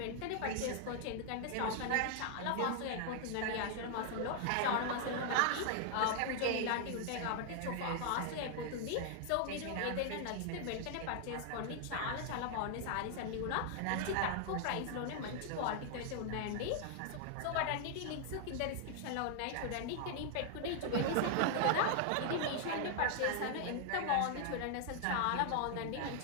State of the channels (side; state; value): both; different; correlation 0.00